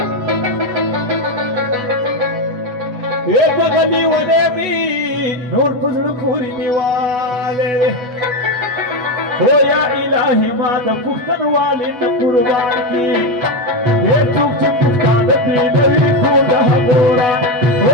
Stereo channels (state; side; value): late; left; 8.1 ms